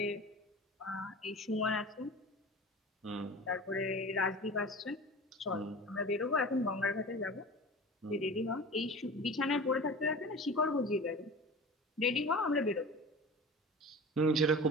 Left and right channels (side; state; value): both; normal; correlation 0.36